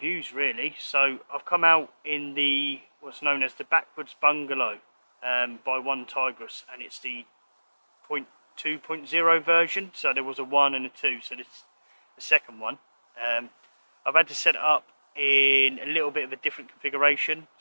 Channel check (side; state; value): both; inverted; correlation -1.00